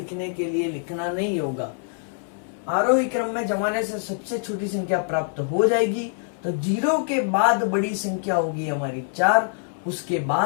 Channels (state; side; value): silent; right; 62 dB below the other